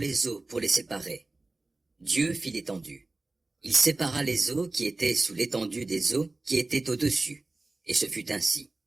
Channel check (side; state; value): left; quieter; 3.2 dB